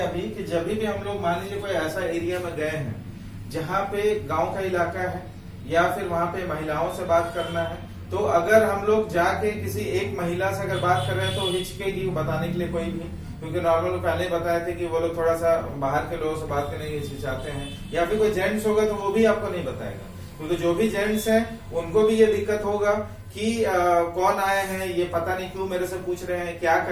कि जब भी हम लोग मान लीजिए कोई ऐसा एरिया में गए हैं जहाँ पे गांव का इलाका है, या फिर वहां पे महिलाओं से बात करना है, तो अगर हम लोग जाके किसी एक महिला से अगर बात कर रहे हैं तो हिचकेगी बताने के लिए कोई भी, क्योंकि नॉर्मल पहले बताए थे कि वो लोग थोड़ा सा बाहर के लोगों से बात करने की हिचकिचाते हैं, या फिर कोई जेंट्स होगा तो वो भी आपको नहीं बताएगा, क्योंकि जो भी जेंट्स हैं उनको भी ये दिक्कत होगा कि कौन आए हैं, ये पता नहीं क्यों मेरे से पूछ रहे हैं, क्या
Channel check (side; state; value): both; identical; correlation 1.00